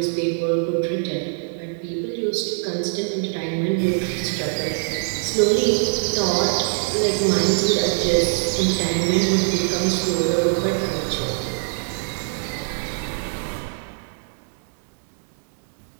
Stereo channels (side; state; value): left; silent; digital silence